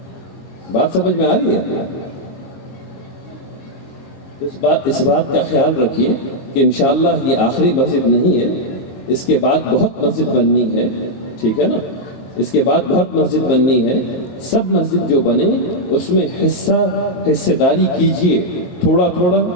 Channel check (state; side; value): late; right; 22 ms